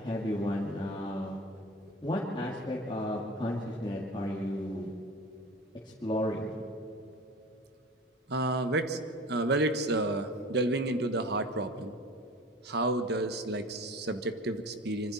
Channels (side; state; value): both; normal; correlation 0.37